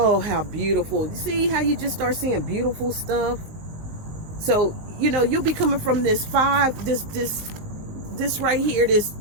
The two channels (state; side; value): late; left; 19 ms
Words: how beautiful. You see how you just start seeing beautiful stuff? So, you know, you'll be coming from this right here, this,